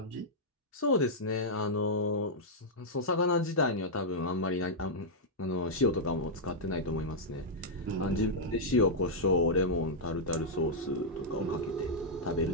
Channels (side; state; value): both; normal; correlation -0.07